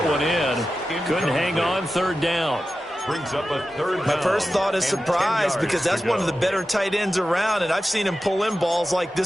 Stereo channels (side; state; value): both; normal; correlation 0.93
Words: one in. Couldn't hang on 3rd down. Brings up a 3rd down. My first thought is surprise because that's one of the better tight ends around, and I've seen him pull in balls like